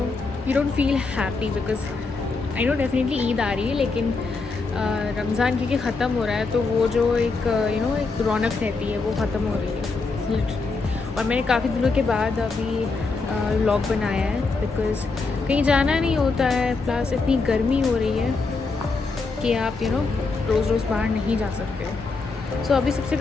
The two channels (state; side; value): quieter; right; 4.1 dB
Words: don't feel happy because I know definitely Eid आ रही है, लेकिन रमज़ान क्योंकि ख़त्म हो रहा है तो वो जो एक एक रौनक रहती है वो ख़त्म हो रही है। और मैंने काफ़ी दिनों के बाद अभी व्लॉग बनाया है बिकॉज़ कहीं जाना नहीं होता है, प्लस इतनी गर्मी हो रही है कि आप रोज़ रोज़ बाहर नहीं जा सकते हो। सो अभी सबसे